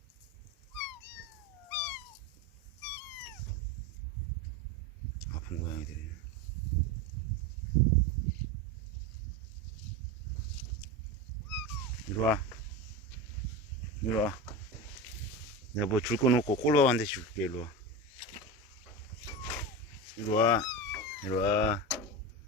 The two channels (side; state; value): both; normal; correlation 0.22